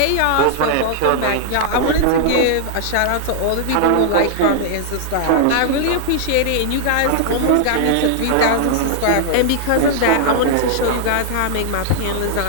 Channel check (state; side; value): different; both; correlation -0.01